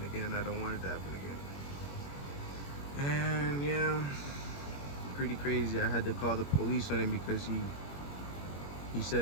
again. I don't want it to happen again. And yeah, pretty crazy. I had to call the police on him because he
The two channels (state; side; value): late; right; 21 ms